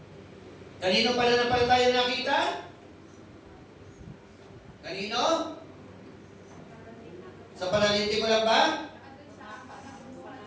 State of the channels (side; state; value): both; identical; correlation 1.00